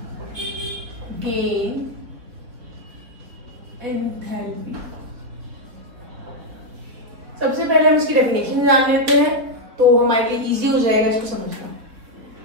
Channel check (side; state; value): left; late; 3.8 ms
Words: gain enthalpy. सबसे पहले हम इसकी डेफिनेशन जान लेते हैं तो हमारे लिए इजी हो जाएगा इसको समझना।